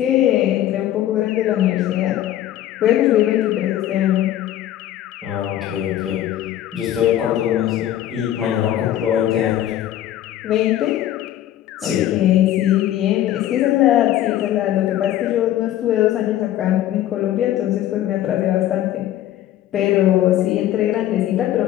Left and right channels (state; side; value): quieter; right; 12.5 dB